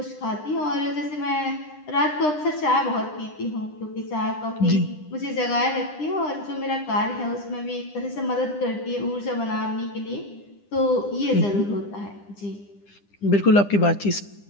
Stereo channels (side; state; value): right; late; 9.9 ms